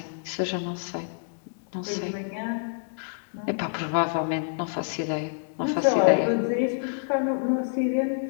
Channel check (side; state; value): right; silent; digital silence